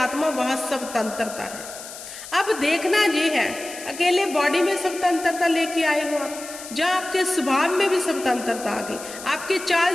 वहां स्वतंत्रता है। अब देखना ये है, अकेले बॉडी में स्वतंत्रता लेके आए हो आप, जहां आपके स्वभाव में भी स्वतंत्रता आ गई, आपके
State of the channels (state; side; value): noise; left; hiss, 13 dB below the sound